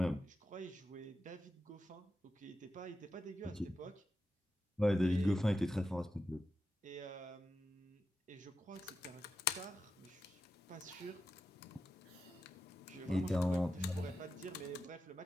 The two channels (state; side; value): normal; both; correlation 0.88